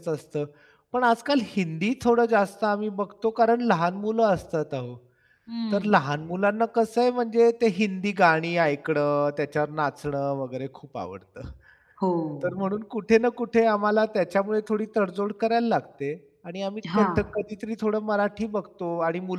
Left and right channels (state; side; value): identical; both; correlation 1.00